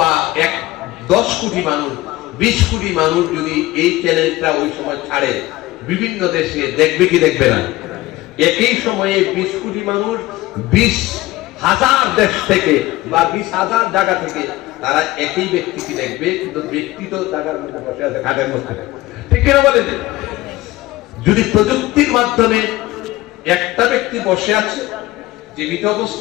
10 কোটি মানুষ, 20 কোটি মানুষ যদি এই চ্যানেলটা ওই সময় ছাড়ে, বিভিন্ন দেশে দেখবে কি দেখবে না? একই সময়ে 20 কোটি মানুষ 20,000 দেশ থেকে বা 20,000 জায়গা থেকে তারা একই ব্যক্তিকে দেখবে, কিন্তু ব্যক্তি তো জায়গার মধ্যে বসে আছে, খাটের মধ্যে। ঠিক কিনা বলেন? যদি প্রযুক্তির মাধ্যমে একটা ব্যক্তি বসে আছে, জীবিত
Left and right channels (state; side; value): quieter; right; 18.1 dB